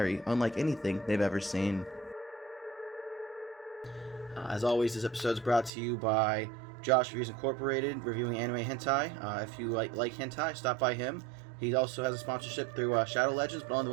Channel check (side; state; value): left; drops out; at 5.7 s